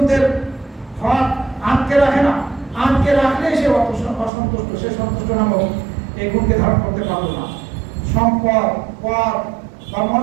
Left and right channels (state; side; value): drops out; left; at 4.3 s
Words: হক আটকে রাখে না, আটকে রাখলে সে অসন্তুষ্ট, সে সন্তুষ্ট নামক এই গুণকে ধারণ করতে পারল না। সম্পদ, পদ বা